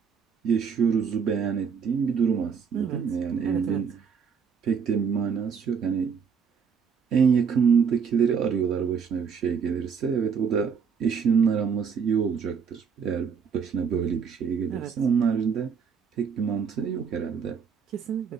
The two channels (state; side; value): quieter; left; 6.5 dB